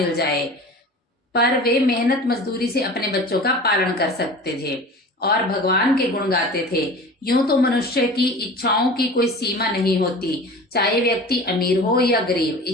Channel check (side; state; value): both; normal; correlation 0.38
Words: जाए, पर वे मेहनत मजदूरी से अपने बच्चों का पालन कर सकते थे और भगवान के गुण गाते थे। यूं तो मनुष्य की इच्छाओं की कोई सीमा नहीं होती, चाहे व्यक्ति अमीर हो या गरीब,